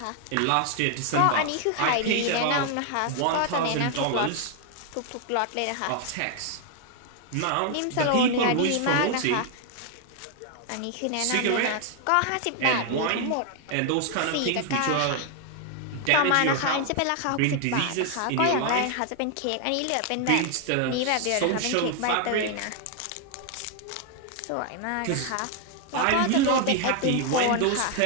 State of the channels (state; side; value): different; both; correlation 0.00